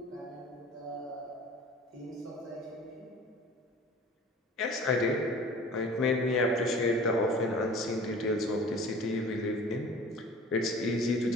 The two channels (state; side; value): normal; both; correlation 0.44